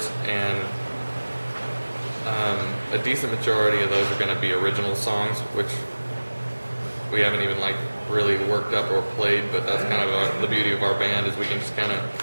and a decent majority of those are going to be original songs, which we haven't even like really worked up or played, but that's kind of the beauty of our band, is we can just kind of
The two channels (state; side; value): inverted; both; correlation -1.00